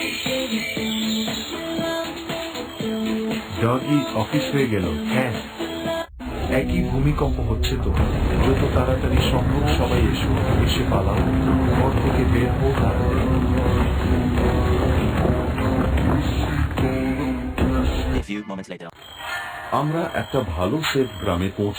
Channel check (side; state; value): both; identical; correlation 1.00